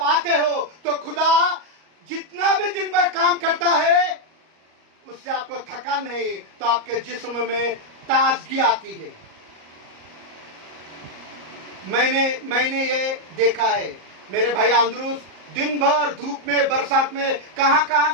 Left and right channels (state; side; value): late; left; 38 ms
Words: आते हो तो खुदा जितना भी दिन भर काम करता है उससे आपको थकान नहीं, तो आपके जिस्म में ताजगी आती है। मैंने ये देखा है, मेरे भाई आंद्रूस दिन भर धूप में बरसात में कहां